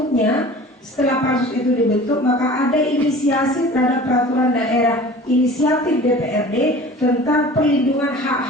setelah pansus itu dibentuk, maka ada inisiasi terhadap peraturan daerah, inisiatif DPRD tentang perlindungan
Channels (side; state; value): both; normal; correlation 0.42